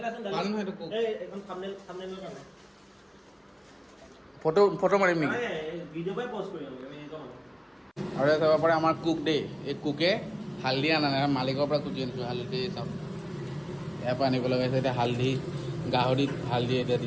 ভাল নহয় এইটো কোক। এখন থাম্বনেইলৰ কাৰণে ফটো মাৰিম নেকি ভিডিঅ' পাই পষ্ট কৰিম আমি এনেকুৱা মানুহ আৰু চাব পাৰে আমাৰ কুক দেই এই কুকে হালধি আনা নাই মালিকৰ পৰা কুটি আনিছোঁ হালধি চাওক ইয়াৰ পৰা আনিব লগা হৈছে এতিয়া হালধি গাহৰিত হালধি এতিয়া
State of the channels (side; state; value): both; identical; correlation 1.00